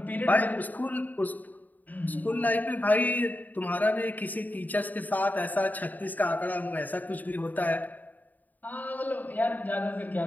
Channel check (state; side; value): late; right; 0.082 ms